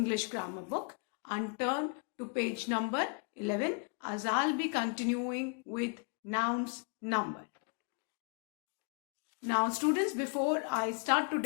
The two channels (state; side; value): quieter; right; 37.7 dB